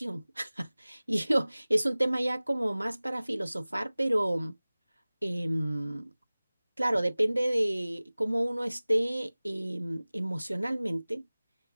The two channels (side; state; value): both; inverted; correlation -0.99